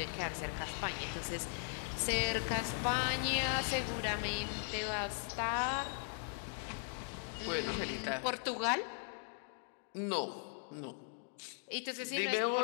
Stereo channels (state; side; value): silent; right; digital silence